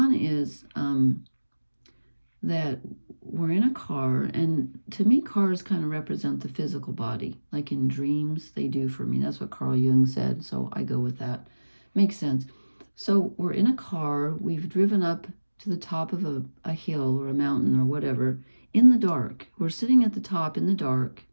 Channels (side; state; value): both; inverted; correlation -1.00